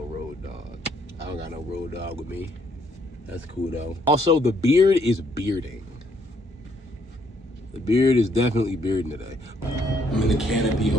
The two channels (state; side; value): normal; both; correlation 0.69